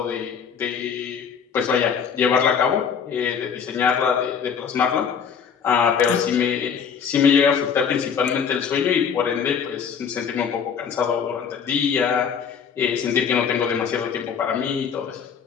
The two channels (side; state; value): right; quieter; 7.0 dB